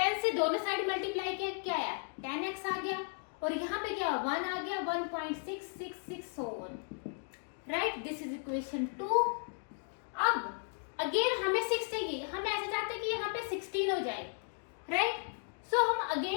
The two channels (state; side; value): silent; right; 54 dB below the other